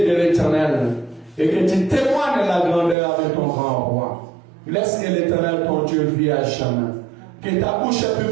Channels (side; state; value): left; drops out; at 3.0 s